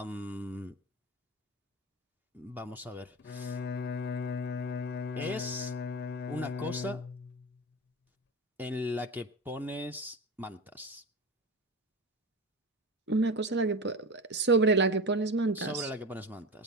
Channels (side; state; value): both; normal; correlation 0.26